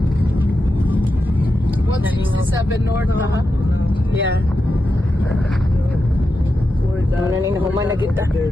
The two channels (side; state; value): both; normal; correlation 0.89